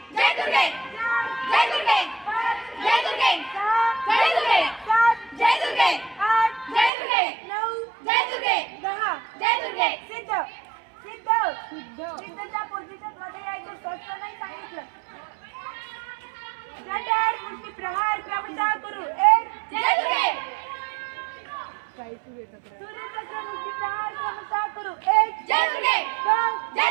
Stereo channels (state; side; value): drops out; left; at 6.9 s